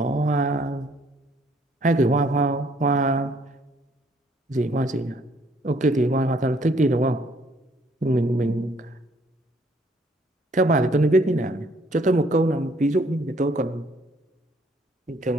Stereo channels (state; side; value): normal; both; correlation 0.64